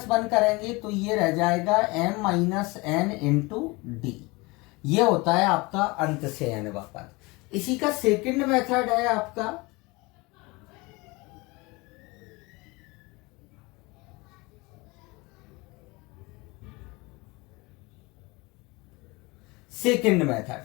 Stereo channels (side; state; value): right; quieter; 24.6 dB